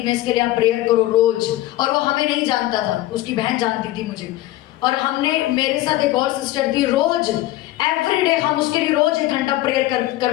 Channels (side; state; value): right; quieter; 16.3 dB